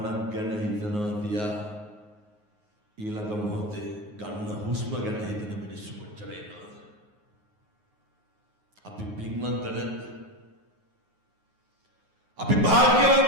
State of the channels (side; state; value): left; late; 9.5 ms